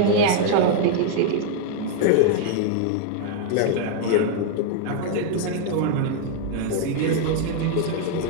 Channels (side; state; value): both; different; correlation 0.00